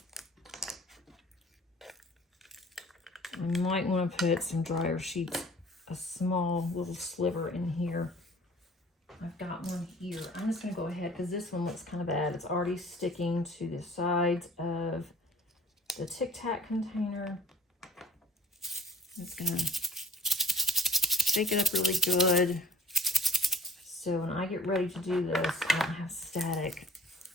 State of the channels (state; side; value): normal; both; correlation 0.53